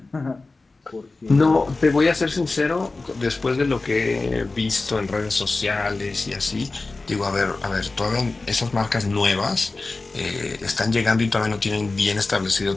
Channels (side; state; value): right; quieter; 3.5 dB